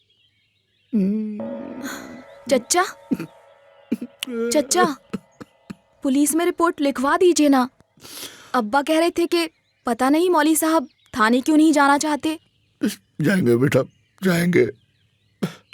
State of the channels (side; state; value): both; identical; correlation 1.00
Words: चच्चा, चच्चा, पुलिस में रिपोर्ट लिखवा दीजिए ना। अब्बा कह रहे थे कि पता नहीं मौली साहब थाने क्यों नहीं जाना चाहते। जाएंगे बेटा, जाएंगे।